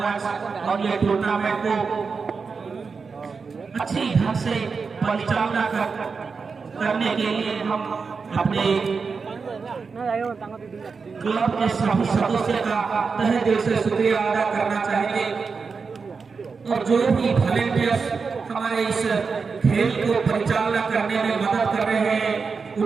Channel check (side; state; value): left; quieter; 5.0 dB